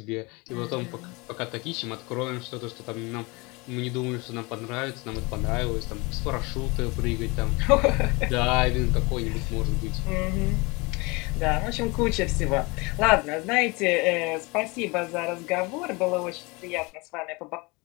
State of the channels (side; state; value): right; quieter; 26.1 dB